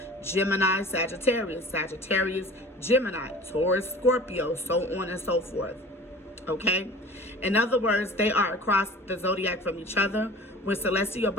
Gemini, Sagittarius. Sagittarius, Gemini. Taurus, Scorpio, so on and so forth. Okay? In other words, they are across the zodiac from each other. When celestial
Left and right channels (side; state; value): both; normal; correlation 0.43